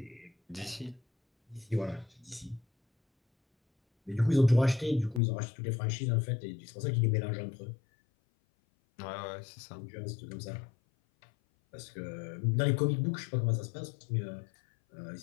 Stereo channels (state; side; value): drops out; right; at 5.2 s